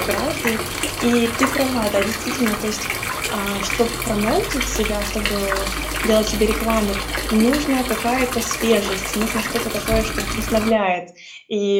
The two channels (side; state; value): both; identical; correlation 1.00